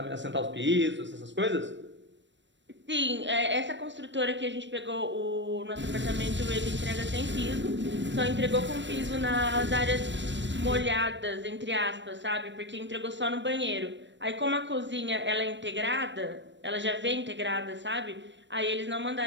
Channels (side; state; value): left; late; 0.53 ms